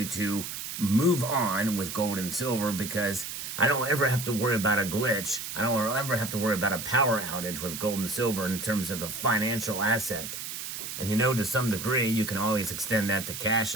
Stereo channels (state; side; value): noise; right; hiss, 7 dB below the sound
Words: to move on with gold and silver, because I don't ever have to worry about a glitch. I don't ever have to worry about a power outage with gold and silver in terms of a financial asset. And to some degree, you can always extend that to cash